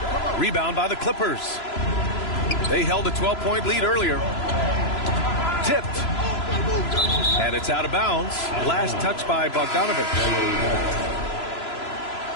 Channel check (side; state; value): right; late; 3.0 ms